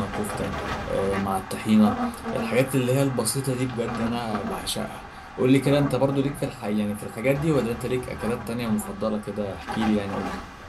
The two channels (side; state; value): both; identical; correlation 1.00